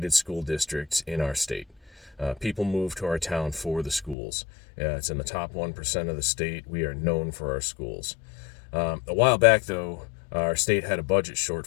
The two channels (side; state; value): right; drops out; at 4.2 s